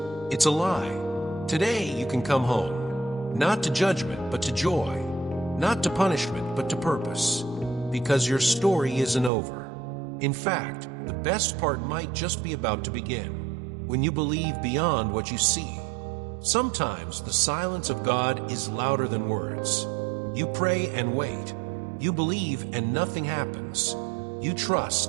It's a lie. Today you can come home. Not to judgment, but to joy. Not to punishment, but to purpose. Because your story isn't over. In fact, the best part might just be about to begin. When you believe beyond what you see. Sometimes the silence of God is louder than words. You pray and wait. You believe and nothing happens. You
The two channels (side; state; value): left; drops out; at 9.3 s